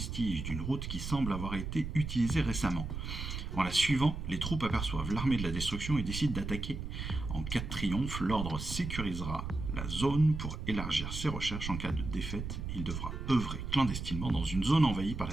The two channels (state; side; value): noise; right; rumble, 5 dB below the sound